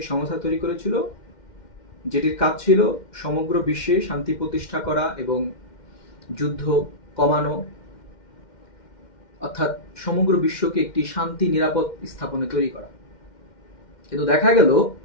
সংস্থা তৈরি করেছিল, যেটির কাজ ছিল সমগ্র বিশ্বে শান্তি প্রতিষ্ঠা করা এবং যুদ্ধ কমানো, অর্থাৎ সমগ্র বিশ্বকে একটি শান্তি নিরাপদ স্থাপনে তৈরি করা। কিন্তু দেখা গেল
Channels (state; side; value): late; right; 2.1 ms